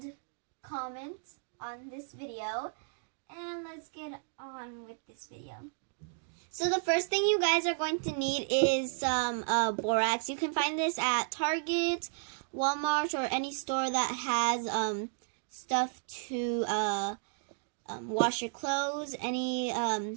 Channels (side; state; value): left; silent; digital silence